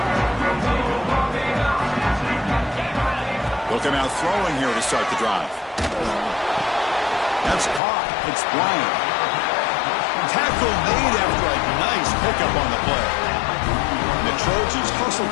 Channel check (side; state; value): right; drops out; at 7.8 s